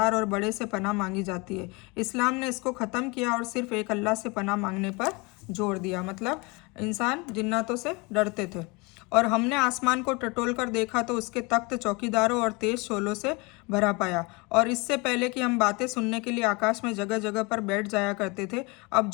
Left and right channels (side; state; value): right; quieter; 27.1 dB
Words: और बड़े से पनाह मांगी जाती है। इस्लाम ने इसको ख़त्म किया और सिर्फ एक अल्लाह से पनाह मांगने पर जोर दिया। मतलब इंसान जिन्नातों से डरते थे। और हमने आसमान को टटोल कर देखा तो उसके तख्त चौकीदारों और तेज शोलों से भरा पाया। और इससे पहले कि हम बातें सुनने के लिए आकाश में जगह जगह पर बैठ जाया करते थे, अब